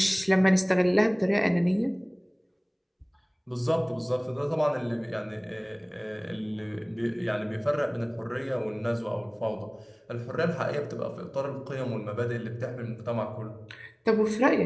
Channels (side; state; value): both; identical; correlation 1.00